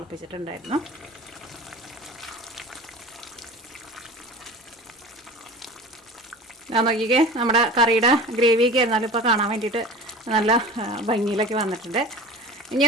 ഞാൻ നോക്കിക്കേ, നമ്മുടെ കറിയുടെ ഗ്രേവിയൊക്കെ ആയിരുന്നാലും ഇപ്പോൾ കാണാൻ വേണ്ടിയിട്ട് നല്ല ഭംഗിയിലൊക്കെ വന്നിട്ടുണ്ട്. ഇനി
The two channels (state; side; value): normal; both; correlation 0.36